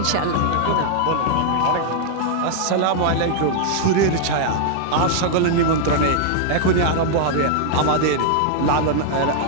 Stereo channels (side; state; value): both; different; correlation 0.00